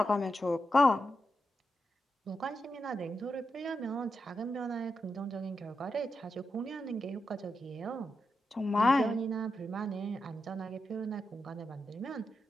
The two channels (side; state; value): both; normal; correlation 0.87